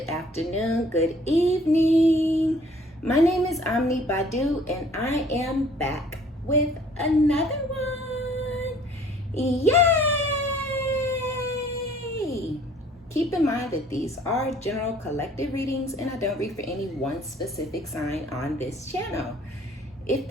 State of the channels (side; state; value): both; normal; correlation 0.56